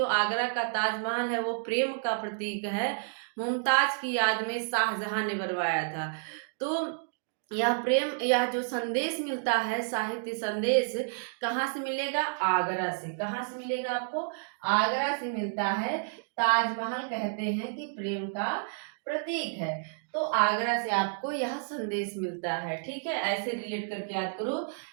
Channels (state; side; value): silent; left; digital silence